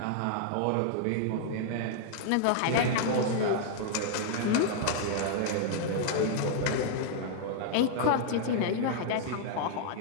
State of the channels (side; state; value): both; different; correlation -0.01